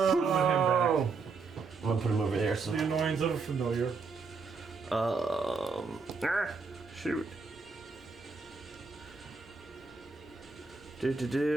him I'm gonna put him over there. So, back. The annoyance of a familiar. shoot.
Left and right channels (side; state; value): left; quieter; 4.6 dB